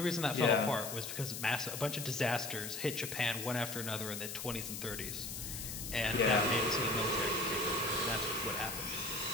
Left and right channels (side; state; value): left; noise; hiss, 6 dB below the sound